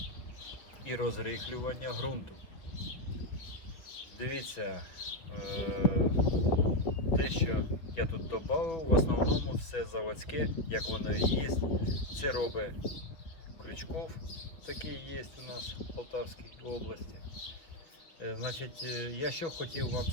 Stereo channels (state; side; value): late; right; 5.7 ms